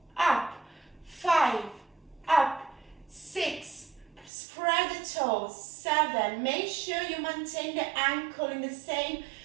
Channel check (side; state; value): left; drops out; at 4.3 s